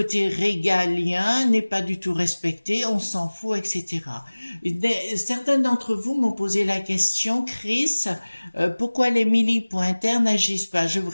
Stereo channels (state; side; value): inverted; both; correlation -1.00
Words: régalien n'est pas du tout respecté, on s'en fout, etc. Certains d'entre vous m'ont posé la question, Chris, pourquoi les militaires n'agissent pas? Je vous